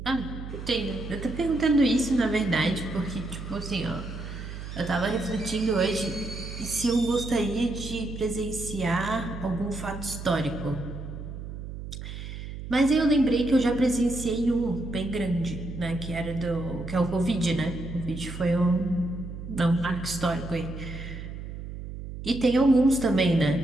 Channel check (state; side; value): noise; right; hum, 9 dB below the sound